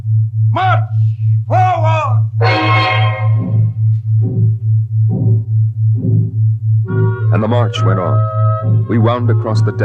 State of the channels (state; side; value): identical; both; correlation 1.00